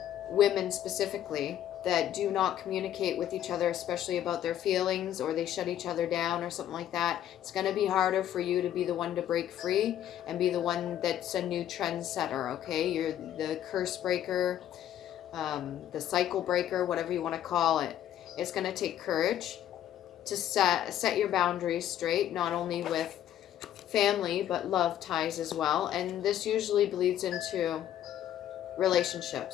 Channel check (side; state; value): right; quieter; 11.4 dB